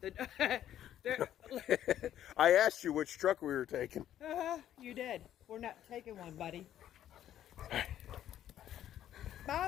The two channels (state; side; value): quieter; right; 11.4 dB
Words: I asked you which truck we were taking. You did. We're not taking one, buddy.